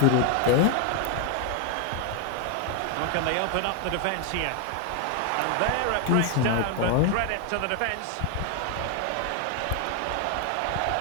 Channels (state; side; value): different; both; correlation 0.00